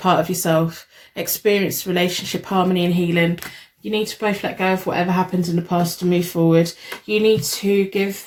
of yourself, experience relationship harmony and healing. You need to both let go of whatever happened in the past to move forward. You need to give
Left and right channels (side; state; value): both; identical; correlation 1.00